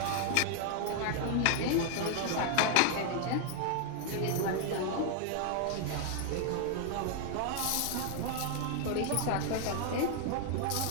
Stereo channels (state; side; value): different; both; correlation 0.00